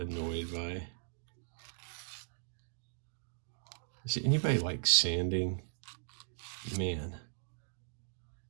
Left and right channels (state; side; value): silent; left; digital silence